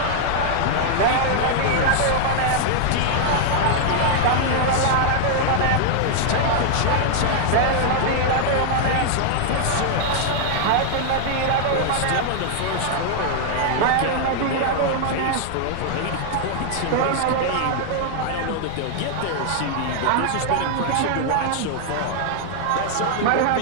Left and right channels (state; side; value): different; both; correlation -0.01